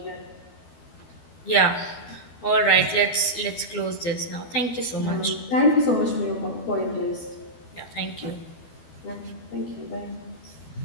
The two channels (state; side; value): late; right; 12 ms